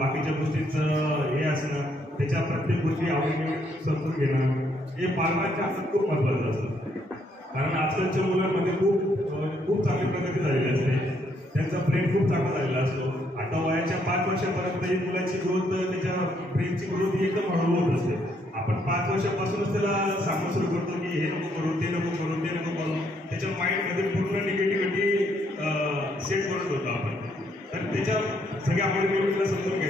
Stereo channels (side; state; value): both; normal; correlation 0.72